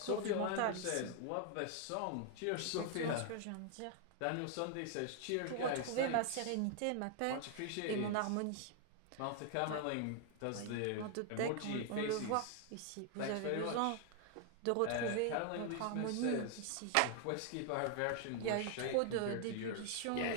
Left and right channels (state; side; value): different; both; correlation 0.00